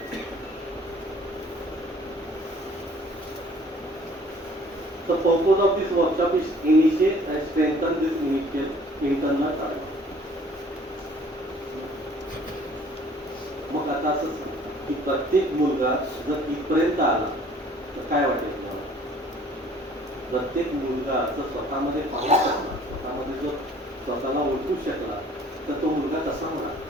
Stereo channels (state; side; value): normal; both; correlation 0.54